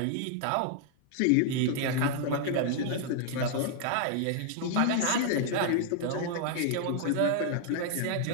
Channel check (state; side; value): different; both; correlation 0.00